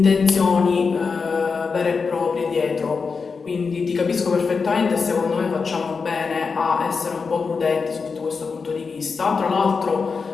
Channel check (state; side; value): quieter; right; 5.0 dB